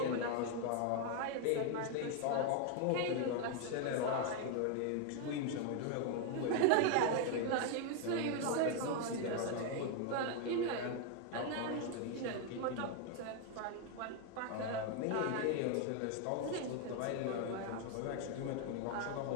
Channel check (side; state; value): both; different; correlation 0.01